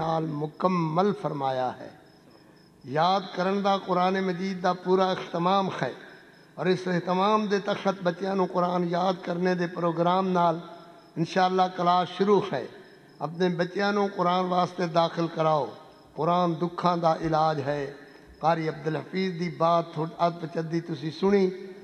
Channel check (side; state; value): both; identical; correlation 1.00